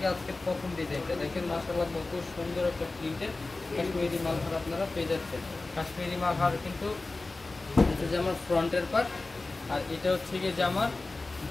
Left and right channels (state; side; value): quieter; right; 3.3 dB